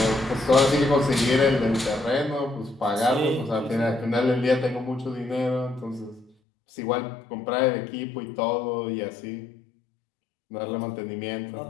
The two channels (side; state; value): right; drops out; at 6.3 s